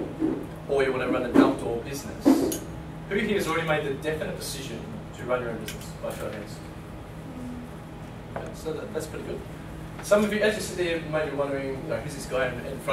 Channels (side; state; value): both; identical; correlation 1.00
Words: or you want to run an outdoor business, who here has already made the definite decision to run your own business? By show of hands. Okay, so that's pretty good. Some of you, as you sit there, you may be wondering, who's this guy in